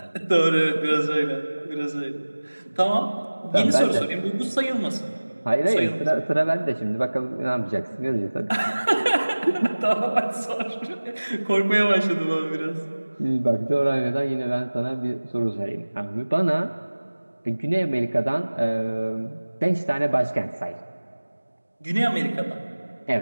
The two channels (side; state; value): both; inverted; correlation -1.00